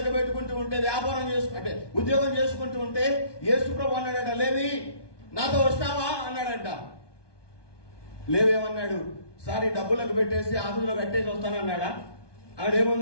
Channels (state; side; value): late; right; 1.2 ms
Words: ఎగబెట్టుకుంటూ ఉంటే, వ్యాపారం అంటే ఉద్యోగం చేసుకుంటూ ఉంటే యేసు ప్రభు అన్నాడట, లేవి నాతో వస్తావా అన్నాడట. లేవి ఏమన్నాడు? సారీ డబ్బులకు పెట్టేసి ఆఫీసులో కట్టేసి వస్తానన్నాడా?